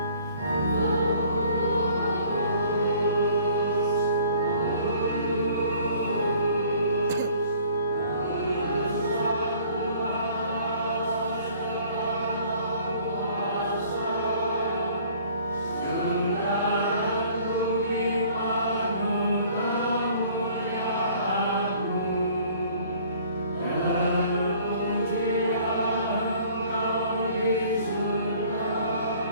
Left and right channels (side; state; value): both; inverted; correlation -0.55